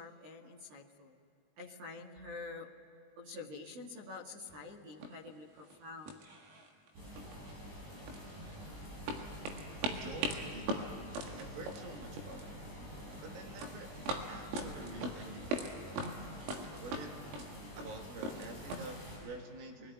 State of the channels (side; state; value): left; late; 20 ms